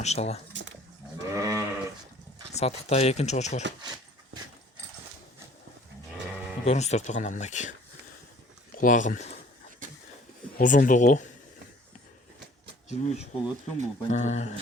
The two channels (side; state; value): both; normal; correlation 0.53